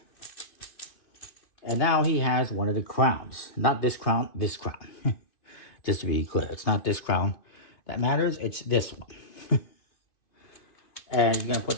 And now he has one of the crowns. Not this crown, this crown. Just to be clear, it's not this crown that matters, it's this one. And you're going to put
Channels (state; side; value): late; right; 2.5 ms